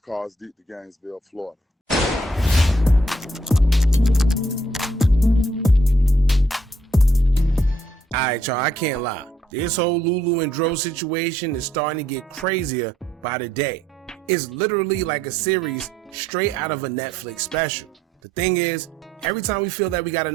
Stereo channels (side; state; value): both; normal; correlation 0.70